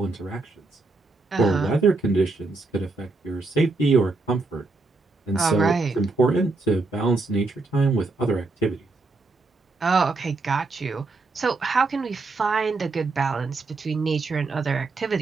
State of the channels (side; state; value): left; quieter; 3.5 dB